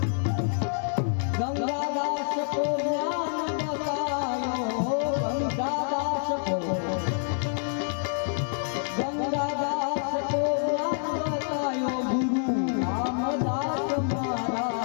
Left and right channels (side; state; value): right; silent; digital silence